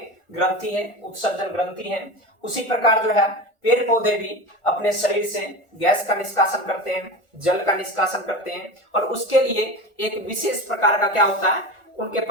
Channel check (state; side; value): late; right; 1.4 ms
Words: ग्रंथि है, उत्सर्जन ग्रंथि है। उसी प्रकार जो है पेड़ पौधे भी अपने शरीर से गैस का निष्कासन करते हैं, जल का निष्कासन करते हैं, और उसके लिए एक विशेष प्रकार का क्या होता है, उनके